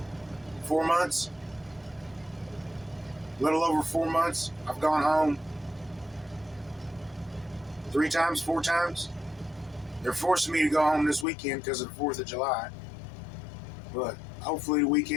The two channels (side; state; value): right; drops out; at 11.2 s